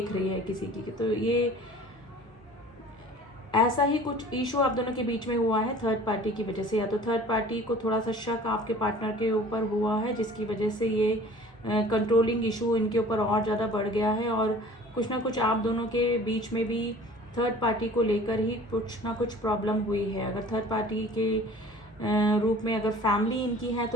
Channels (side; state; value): both; normal; correlation 0.46